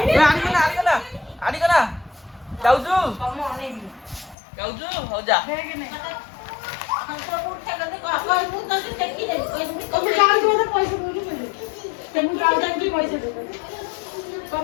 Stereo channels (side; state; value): right; drops out; at 4.4 s